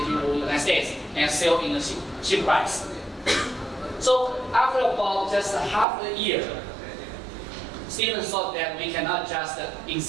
the United States and sell in a cheap price. So after about just half a year, Steven thought that we cannot just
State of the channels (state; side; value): drops out; left; at 5.9 s